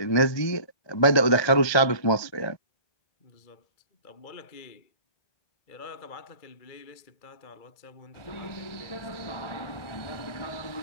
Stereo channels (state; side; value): late; right; 1.3 ms